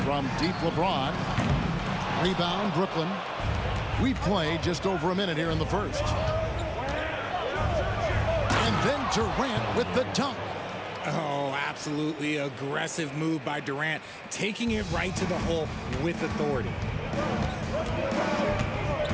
From deep, LeBron. Rebound, Brooklyn. We played just over a minute here in the first. And then Durant with the dunk. Oh, absolutely aggressive move by Durant, taking it right to the hole with authority.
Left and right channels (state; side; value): identical; both; correlation 1.00